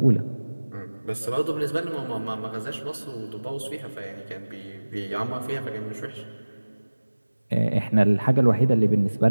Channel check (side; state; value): both; inverted; correlation -1.00